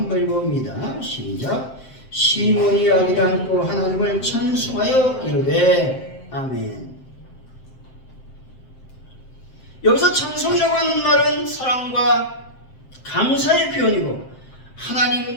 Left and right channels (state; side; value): late; right; 7.7 ms